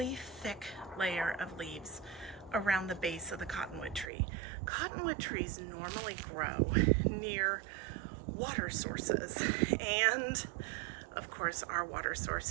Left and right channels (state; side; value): drops out; left; at 4.1 s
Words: thick layer of leaves around the base of the cottonwood tree. Cottonwood trees normally grow near water sources, and of course our water source